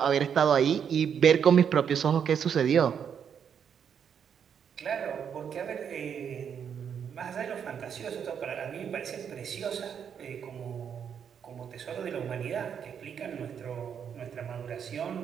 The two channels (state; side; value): quieter; left; 7.8 dB